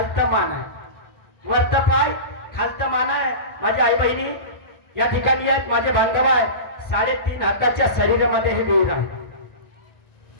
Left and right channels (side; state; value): right; late; 1.1 ms